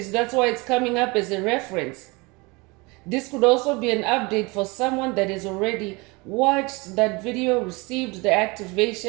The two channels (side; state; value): left; quieter; 26.2 dB